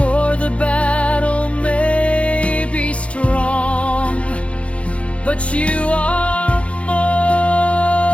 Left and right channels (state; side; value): late; right; 0.062 ms